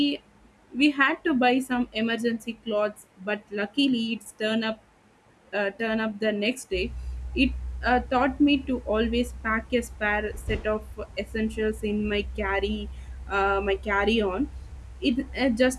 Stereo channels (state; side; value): identical; both; correlation 1.00